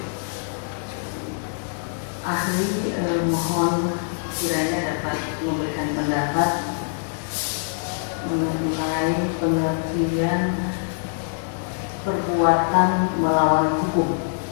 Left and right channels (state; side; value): silent; right; 63 dB below the other